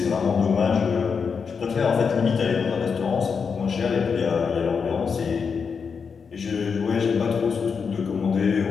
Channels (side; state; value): right; quieter; 5.8 dB